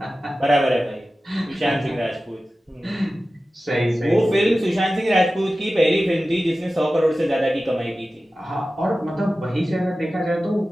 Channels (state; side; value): normal; both; correlation 0.95